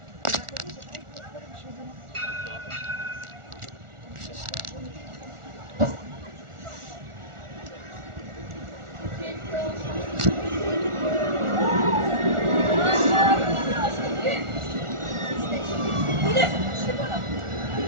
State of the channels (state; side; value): late; left; 1.4 ms